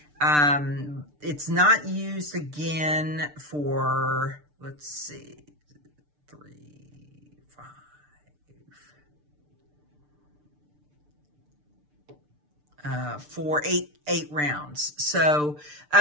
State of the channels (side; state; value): left; late; 6.7 ms